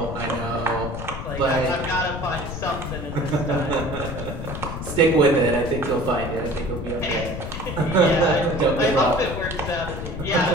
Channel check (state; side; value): noise; left; rumble, 8 dB below the sound